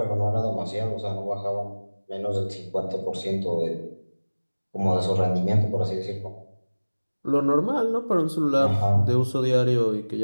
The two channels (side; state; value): both; inverted; correlation -1.00